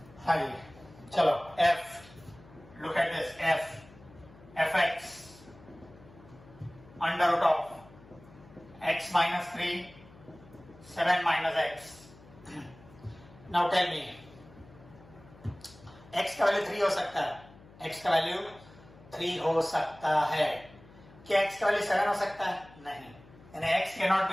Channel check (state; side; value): noise; left; hum, 23 dB below the sound